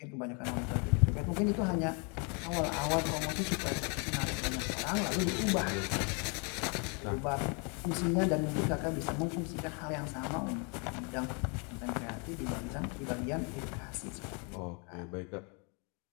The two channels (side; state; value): right; quieter; 35.2 dB